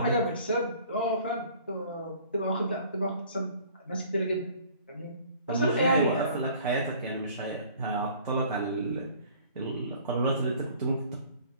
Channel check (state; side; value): inverted; both; correlation -0.52